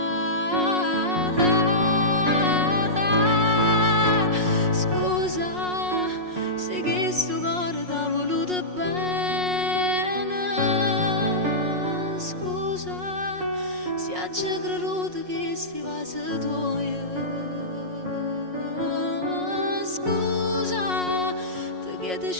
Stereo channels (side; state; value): left; late; 5.5 ms